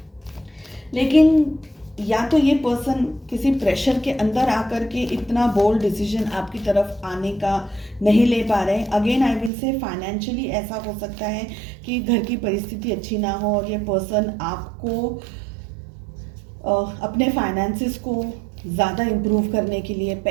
लेकिन या तो ये पर्सन किसी प्रेशर के अंदर आकर के इतना बोल्ड डिसीजन आपकी तरफ आने का नहीं ले पा रहे। Again I will say financially ऐसा हो सकता है कि घर की परिस्थिति अच्छी ना हो और ये पर्सन आपको अपने फाइनेंसिस को ज़्यादा इम्प्रूव करने के लिए,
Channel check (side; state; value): left; drops out; at 9.5 s